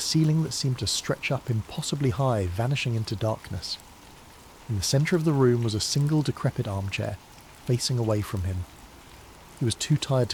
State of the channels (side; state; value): both; identical; correlation 1.00